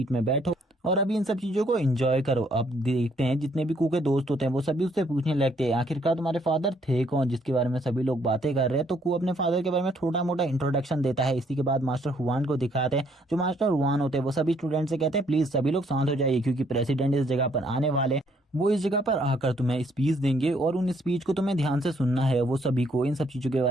में बैठो और अभी इन सब चीजों को एंजॉय करो। अब देखते हैं जितने भी कू के दोस्त होते हैं वो सभी उससे पूछने लगते हैं, आखिरकार तुम्हारे फादर थे कौन जिसके बारे में सभी लोग बातें कर रहे हैं। तो कू अपने फादर के बारे में छोटा मोटा इंट्रोडक्शन देता है। इसी के बाद मास्टर हुआन को दिखाते हैं। जो मास्टर हुआन होते हैं वो सभी स्टूडेंट से कहते हैं, प्लीज सभी लोग शांत हो जाइए क्योंकि प्रेसिडेंट इस जगह पर आने वाले। वो इस जगह पर आकर तुम्हें स्पीच देंगे और उन स्पीच को तुम्हें ध्यान से सुनना है। वो सभी को इन सब चीज़ों के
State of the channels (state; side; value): normal; both; correlation 0.67